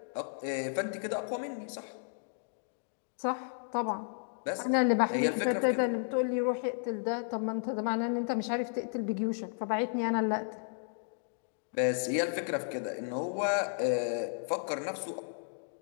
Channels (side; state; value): right; silent; digital silence